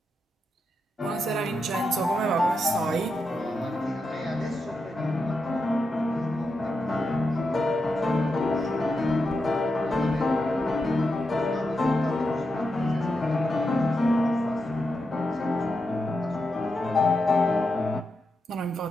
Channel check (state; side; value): normal; both; correlation 0.86